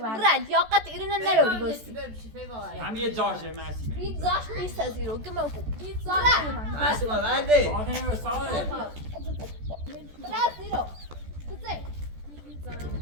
یا قط ایرون نروری بستی هم یه جاشه ماسی هیچ زاش نیست از ایرو گما بو هیچ زاش ماسو بعدی آخه ساله برد ایرو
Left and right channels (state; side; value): late; left; 14 ms